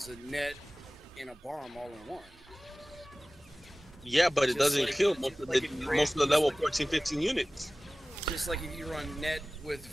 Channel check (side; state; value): both; normal; correlation 0.98